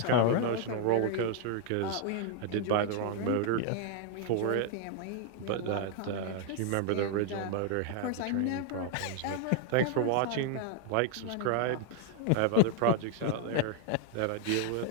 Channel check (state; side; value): different; both; correlation 0.00